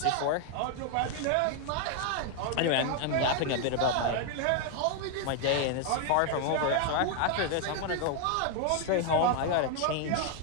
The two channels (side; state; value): both; different; correlation 0.00